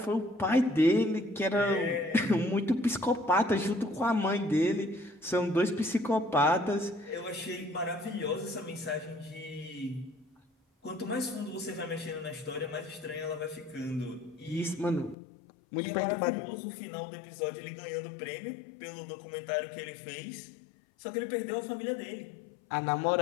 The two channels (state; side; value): drops out; right; at 15.2 s